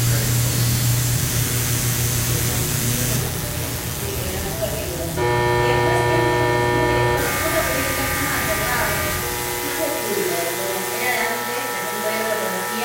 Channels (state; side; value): identical; both; correlation 1.00